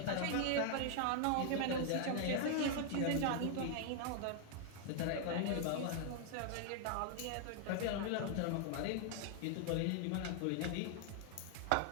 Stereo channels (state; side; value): different; both; correlation 0.00